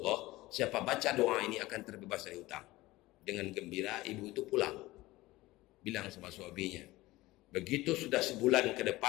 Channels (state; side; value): quieter; right; 18.8 dB